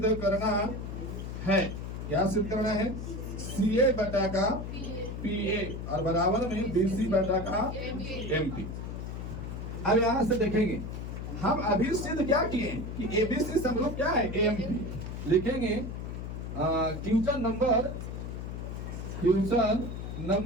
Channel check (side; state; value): left; noise; hum, 6 dB below the sound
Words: करना है, क्या सिद्ध करना है, सी ए बटा का पी ए और बराबर में बी सी बटा का एम पी। अब यहाँ से देखेंगे हम अभी सिद्ध क्या किए कि एबीसी समरूप क्या है, एम पी। लिखेंगे क्वेश्चन नंबर